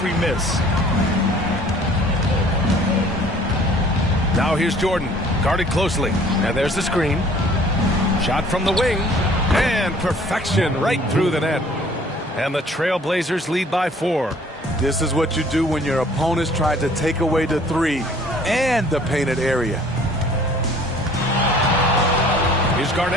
miss. Now here's Jordan, guarded closely. And there's the screen. Shot from the wing. And perfection right through the net. And the Trailblazers lead by 4. This is what you do when your opponents try to take away the 3 and the painted area. Here's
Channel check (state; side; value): normal; both; correlation 0.54